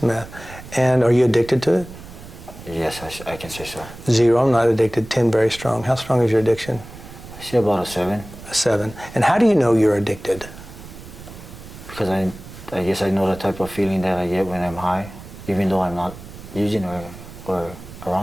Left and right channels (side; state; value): right; noise; rumble, 16 dB below the sound